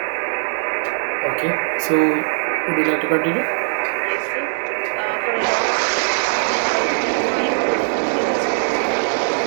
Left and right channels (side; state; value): left; silent; digital silence